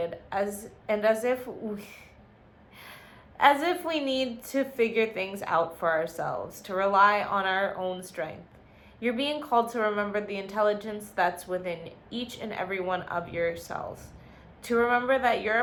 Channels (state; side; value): identical; both; correlation 1.00